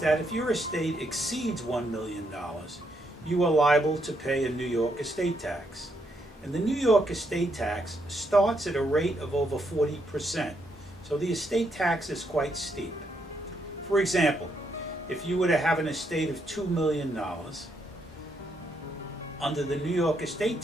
that if your estate exceeds $1 million, you are liable to pay a New York estate tax. And the New York estate tax starts at a rate of over 40%. So the estate tax is quite steep. For example, if you were to have an estate of $2 million, under the New York estate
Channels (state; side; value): normal; both; correlation 0.77